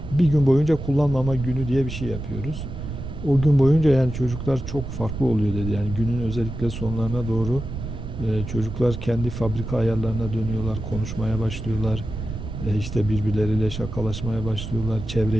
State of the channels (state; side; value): noise; right; rumble, 7 dB below the sound